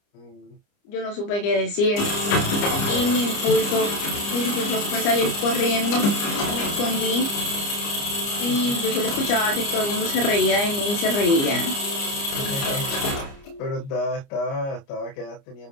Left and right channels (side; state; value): right; late; 29 ms